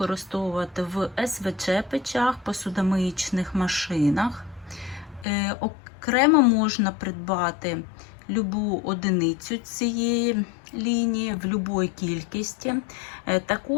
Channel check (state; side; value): drops out; right; at 5.2 s